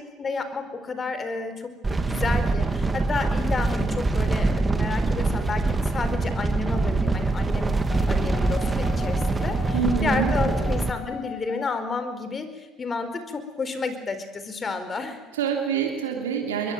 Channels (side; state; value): both; normal; correlation 0.77